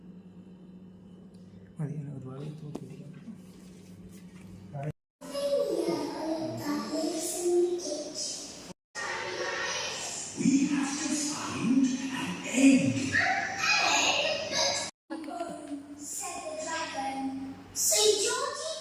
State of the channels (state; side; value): identical; both; correlation 1.00